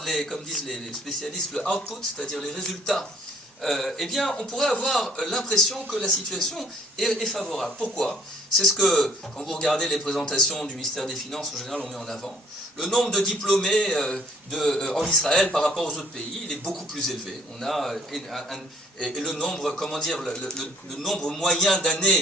comme disent les spécialistes, le output, c'est-à-dire les résultats, eh bien, on pourrait avoir l'impression que la situation est favorable. Pourquoi? C'est ce que, quand vous regardez les présentations du ministère des Finances, en général, on met en avant. Le nombre de diplômés en Israël par rapport aux autres pays, il est beaucoup plus élevé. On a et le nombre, comment dire, le nombre moyen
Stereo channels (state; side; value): normal; both; correlation 0.58